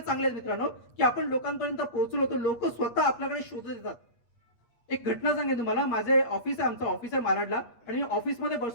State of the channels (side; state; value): right; late; 8.4 ms